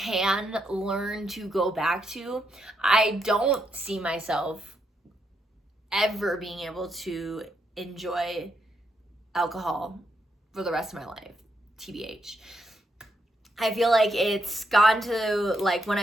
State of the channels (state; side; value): normal; both; correlation 0.79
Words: learn to go back to. I don't see myself ever being able to enjoy alcohol for the rest of my life, TBH. I feel like it's gone to like, when